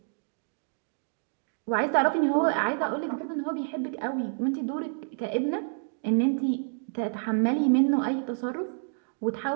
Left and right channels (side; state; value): left; silent; digital silence